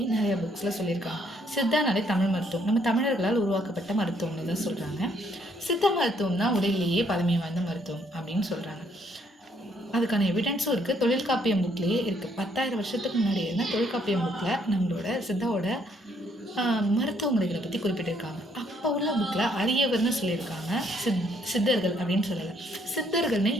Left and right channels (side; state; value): both; normal; correlation 0.69